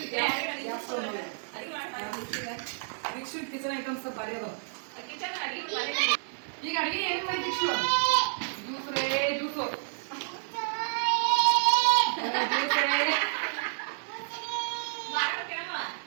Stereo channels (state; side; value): silent; left; digital silence